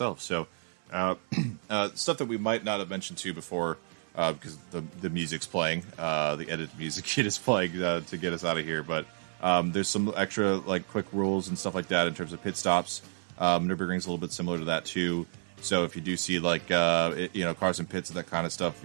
So stuff that we might not have mentioned too before, because the music's playing, the edited music is playing to get us out of here, but. There's some extra quick rules and stuff like that in terms of pit stops. Nürburgring's a little bit similar to that too. So if you do see cars in pits and that kind of stuff,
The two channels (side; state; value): left; silent; 55 dB below the other